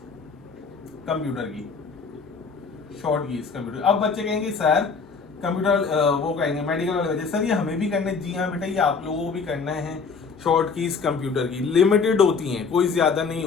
कंप्यूटर की, शॉर्ट कीज कंप्यूटर। अब बच्चे कहेंगे सर कंप्यूटर वो कहेंगे मेडिकल वाले बच्चे, सर ये हमें भी करना है। जी हाँ बेटा, ये आप लोगों को भी करना है। शॉर्ट कीज कंप्यूटर की लिमिटेड होती हैं, कोई ज्यादा नहीं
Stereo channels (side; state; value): right; quieter; 5.1 dB